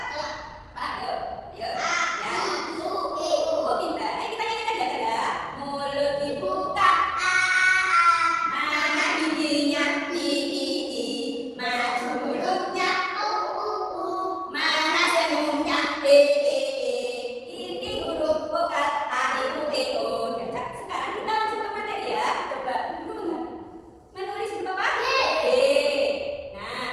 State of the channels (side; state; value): both; identical; correlation 1.00